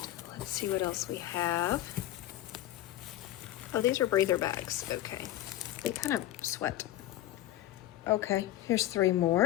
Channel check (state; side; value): quieter; right; 14.3 dB